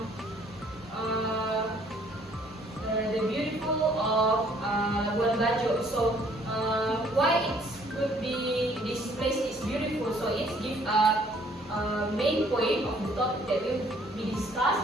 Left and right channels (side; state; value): both; normal; correlation 0.61